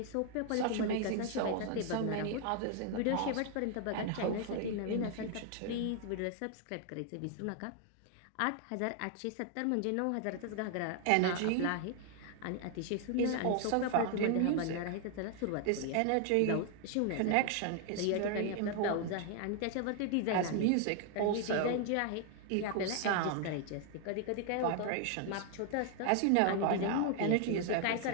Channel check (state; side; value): different; both; correlation 0.00